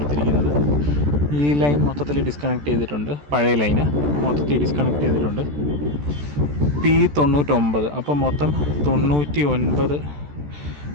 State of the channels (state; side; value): late; left; 14 ms